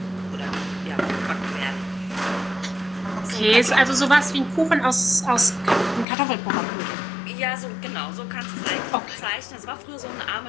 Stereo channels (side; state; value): right; drops out; at 6.1 s